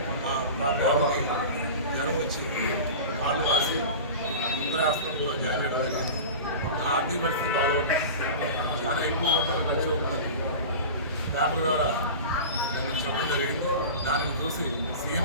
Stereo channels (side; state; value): both; inverted; correlation -0.32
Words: మా బాబుకి జ్వరం వచ్చి కాళ్ళు వాసి ముందర హాస్పిటల్లో జాయిన్ చేయడం జరిగింది. నా ఆర్థిక పరిస్థితి బాగోదు, చాలా ఎక్కువ ఖర్చు అవుతుంది. పేపర్ ద్వారా నేను చెప్పడం జరిగింది. దానిని చూసి